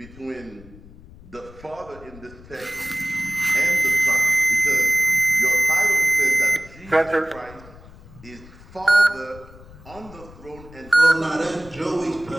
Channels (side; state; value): left; noise; rumble, 20 dB below the sound